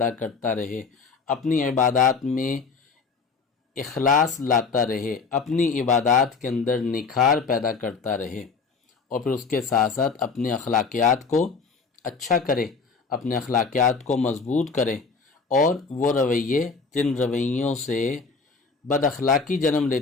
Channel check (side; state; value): right; quieter; 4.9 dB